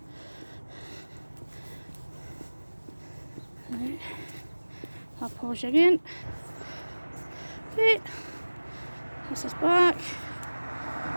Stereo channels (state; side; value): inverted; both; correlation -1.00